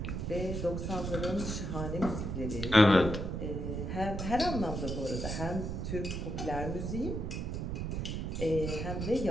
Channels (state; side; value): noise; right; rumble, 3 dB below the sound